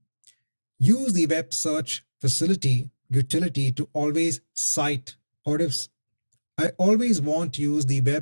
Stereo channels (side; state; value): both; inverted; correlation -1.00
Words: Use the web search facility utility to always cite, or if I always want to use the